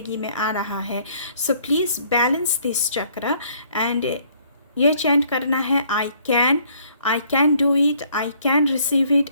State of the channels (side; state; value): both; inverted; correlation -0.62